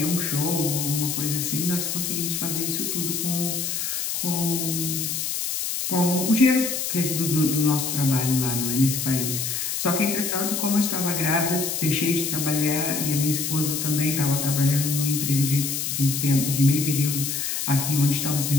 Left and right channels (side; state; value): left; noise; hiss, 2 dB below the sound